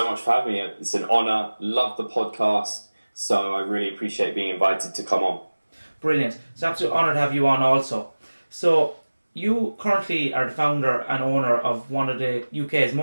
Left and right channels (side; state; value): both; inverted; correlation -1.00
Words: much for having me. It's an honour. Love the podcast. So I really appreciate being invited to come on. Brilliant. It's an absolute honour to have you on also. So you currently are the founder and owner of one of the UK's